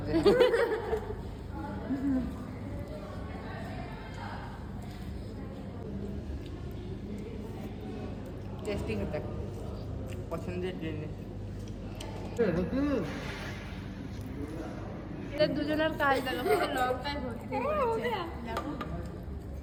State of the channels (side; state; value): both; identical; correlation 1.00